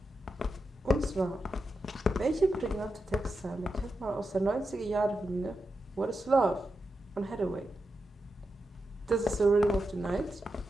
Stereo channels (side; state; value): both; normal; correlation 0.88